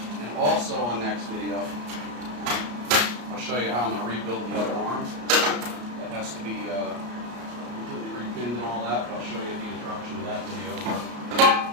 And also on next video, I'll show you how I'm going to rebuild the other arm. That has to be completely repinned and all that, but I'll show you the introduction to that video.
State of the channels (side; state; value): left; late; 33 ms